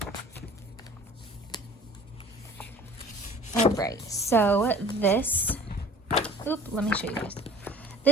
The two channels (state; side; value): normal; both; correlation 0.47